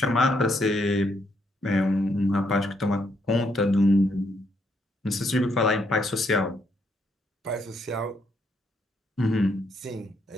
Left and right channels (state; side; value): normal; both; correlation 0.75